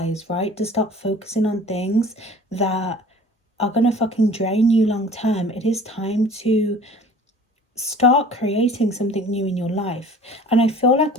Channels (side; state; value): both; normal; correlation 0.46